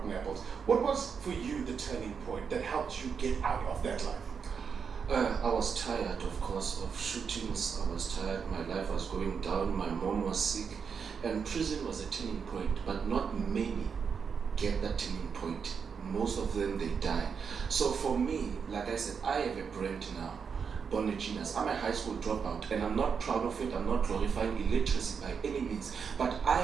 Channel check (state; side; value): quieter; left; 6.2 dB